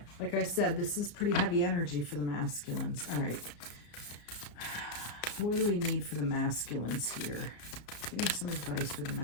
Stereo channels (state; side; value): late; right; 34 ms